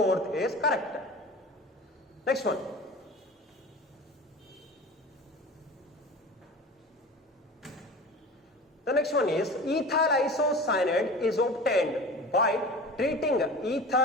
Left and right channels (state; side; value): normal; both; correlation 0.36